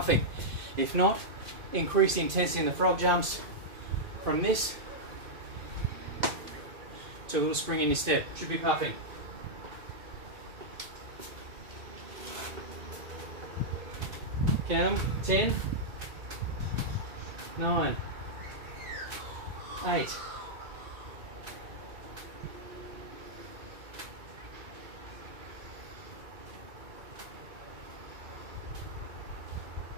If not, increase the intensity in the frog jumps from this to a little spring in your step. Should be puffing. Count them. 10, 9, 8,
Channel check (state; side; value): late; left; 2.5 ms